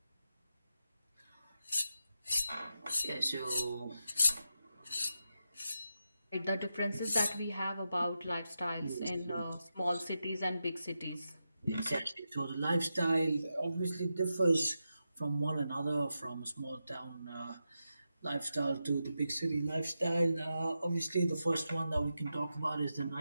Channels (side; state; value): both; inverted; correlation -0.88